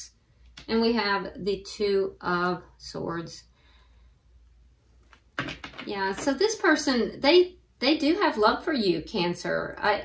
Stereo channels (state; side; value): identical; both; correlation 1.00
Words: and we have the Two of Swords. Yeah, so this person, they do have love for you, Cancer.